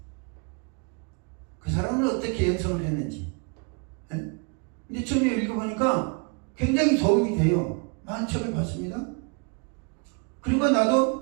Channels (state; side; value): quieter; left; 35.2 dB